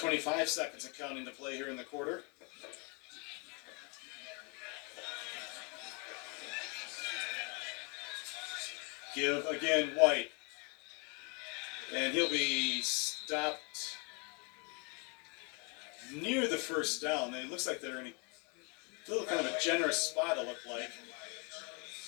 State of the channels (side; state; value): right; quieter; 32.8 dB